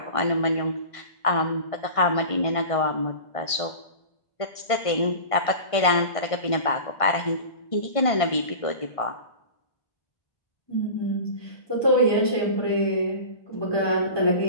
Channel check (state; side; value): late; right; 1.5 ms